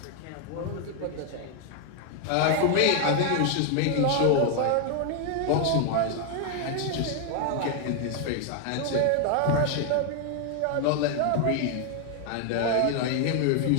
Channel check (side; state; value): both; different; correlation 0.00